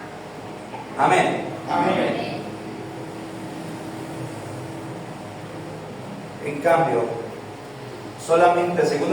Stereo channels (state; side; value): noise; left; hum, 28 dB below the sound